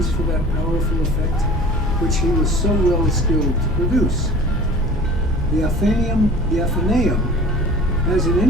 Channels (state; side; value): noise; right; hum, 10 dB below the sound